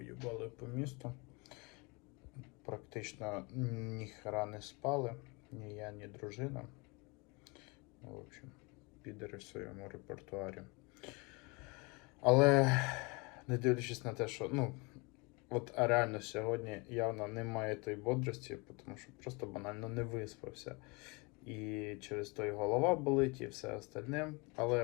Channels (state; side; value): quieter; right; 28.3 dB